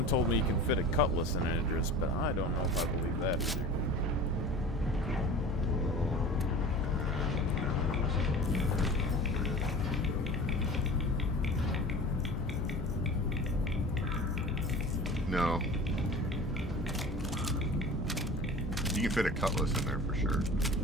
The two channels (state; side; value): normal; both; correlation 0.38